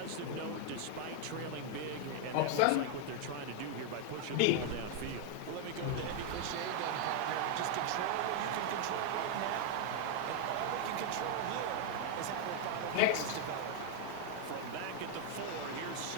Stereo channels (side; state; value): both; different; correlation 0.00